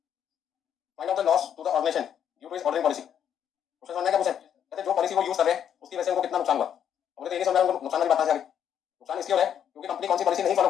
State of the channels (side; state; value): right; quieter; 9.1 dB